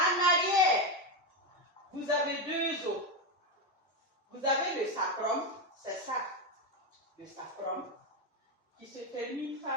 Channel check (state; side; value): normal; both; correlation 0.09